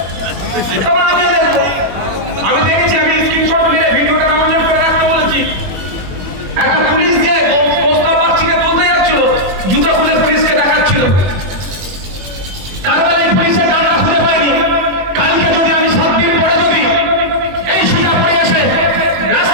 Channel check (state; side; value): late; left; 21 ms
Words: তখন আমি দেখবো। আমি দেখেছি, আমি স্ক্রিনশট নিয়ে ভিডিওটা ডাউনলোড করে রাখতে বলেছি। একটা পুলিশ দিয়ে প্রস্তাব পাচ্ছিকে তুলতে যাচ্ছিল, জুতা খুলে পুলিশকে দেখাচ্ছিল। তারপরে এই পুলিশের ডান্ডা খুঁজে পাইনি। কালকে যদি আমি 7 দিন পরে যদি এই সুজাপুরে এসে